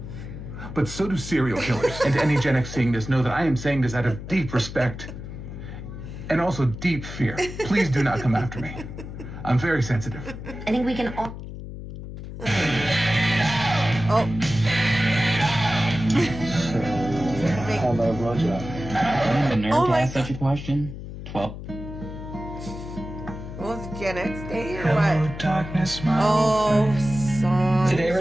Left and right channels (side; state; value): left; noise; hum, 10 dB below the sound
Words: But so do serial killers. And to any Gen X seeing this, know that I am saying this out of deep respect and also deep fear. Please do not come after me. I'm very sensitive. I think we can all... Oh. How about a blowjob? The nerd Oh to my ask such a question? 12. What was it, Gen X Day or Hello, what? darkness, my Oh, song. Today